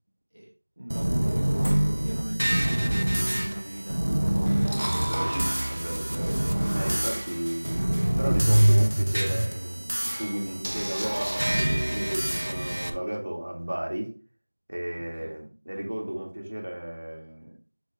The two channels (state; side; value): inverted; both; correlation -1.00